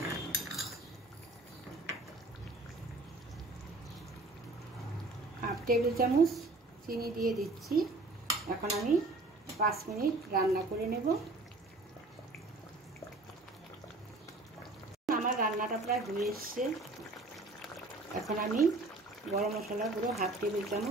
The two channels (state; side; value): quieter; left; 3.0 dB